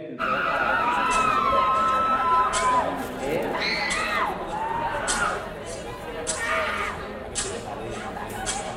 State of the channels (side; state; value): both; identical; correlation 1.00